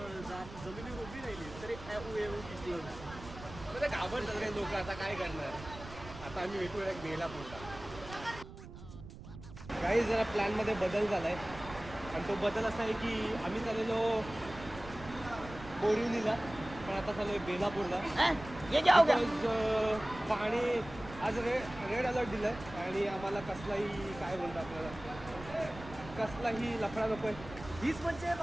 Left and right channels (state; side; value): noise; right; rumble, 14 dB below the sound